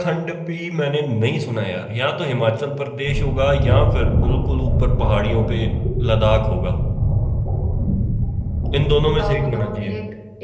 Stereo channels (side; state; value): both; identical; correlation 1.00